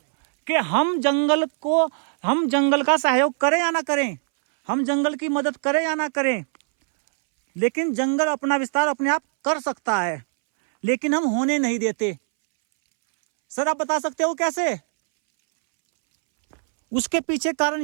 कि हम जंगल का सहयोग करें या ना करें, हम जंगल की मदद करें या ना करें, लेकिन जंगल अपना विस्तार अपने आप कर सकता है, लेकिन हम होने नहीं देते। सर आप बता सकते हो कैसे? उसके पीछे कारण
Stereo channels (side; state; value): left; silent; 64 dB below the other